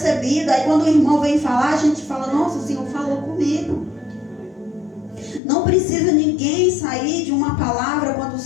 Aí quando o irmão vem falar, a gente fala, nossa, o Senhor falou comigo. Não precisa ninguém sair de uma palavra quando o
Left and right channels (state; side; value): drops out; right; at 5.4 s